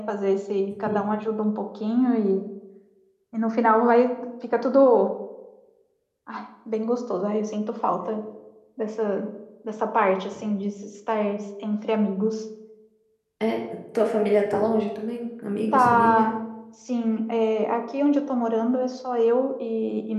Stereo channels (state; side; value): identical; both; correlation 1.00